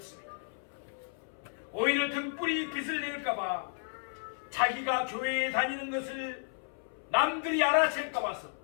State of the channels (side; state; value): right; silent; 56 dB below the other